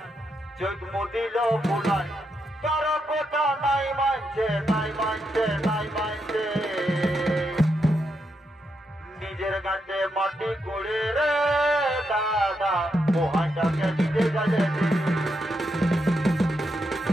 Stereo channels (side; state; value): both; normal; correlation 0.82